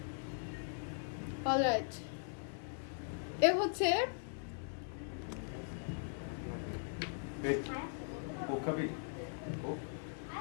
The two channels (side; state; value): right; silent; digital silence